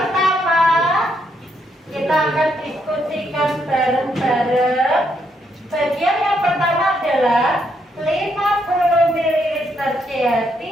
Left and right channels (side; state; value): both; normal; correlation 0.76